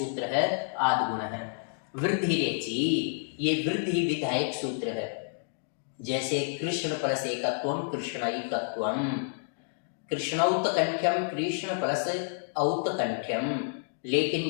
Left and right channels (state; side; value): silent; right; digital silence